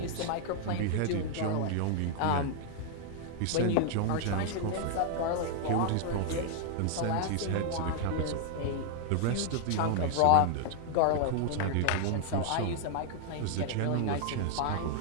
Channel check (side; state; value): both; different; correlation 0.00